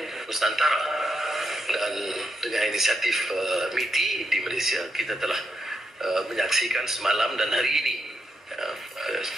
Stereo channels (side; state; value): both; normal; correlation 0.82